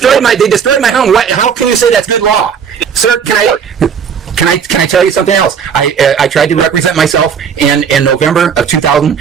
my home. How can you say that's good law? Sir, can I tell you something else? I tried to represent myself in November of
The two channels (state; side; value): quieter; left; 7.2 dB